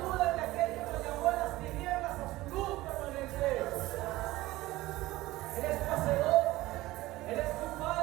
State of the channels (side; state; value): left; quieter; 17.9 dB